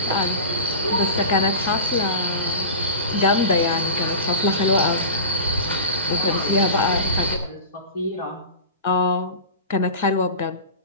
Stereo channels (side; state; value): both; inverted; correlation -0.31